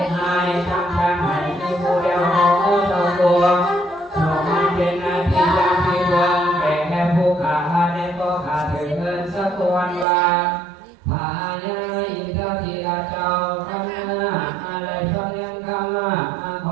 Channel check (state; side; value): drops out; left; at 10.1 s